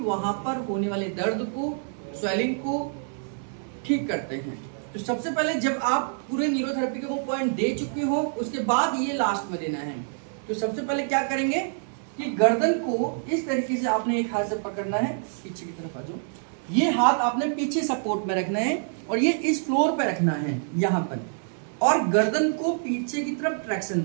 पर होने वाले दर्द को, स्वेलिंग को ठीक करते हैं। तो सबसे पहले जब आप पूरे न्यूरोथेरेपी के वो पॉइंट दे चुके हो, उसके बाद ये लास्ट में देना है। तो सबसे पहले क्या करेंगे कि गर्दन को इस तरीके से आपने एक हाथ से पकड़ना है, पीछे की तरफ आ जाओ, ये हाथ आपने पीछे सपोर्ट में रखना है और ये इस फ्लोर पे रखना है यहाँ पर, और गर्दन को पीछे की तरफ ट्रैक्शन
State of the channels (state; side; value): silent; left; 58 dB below the other